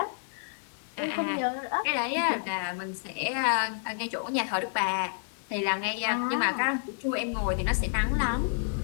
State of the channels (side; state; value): right; silent; 58 dB below the other